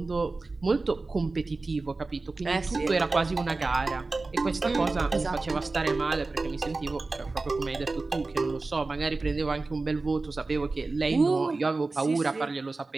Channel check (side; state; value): left; quieter; 3.5 dB